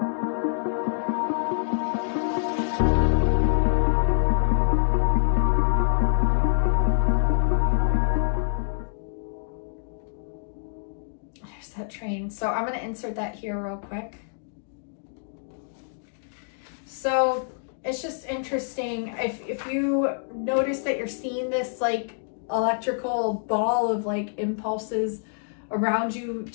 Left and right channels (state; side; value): silent; right; digital silence